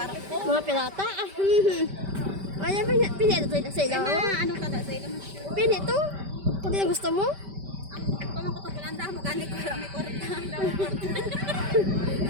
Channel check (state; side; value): late; left; 5.1 ms